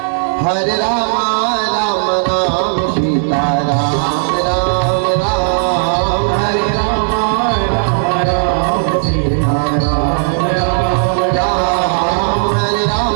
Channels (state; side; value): silent; left; 60 dB below the other